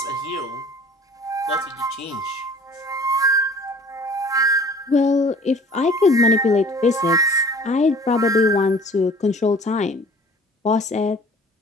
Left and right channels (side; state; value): both; normal; correlation 0.49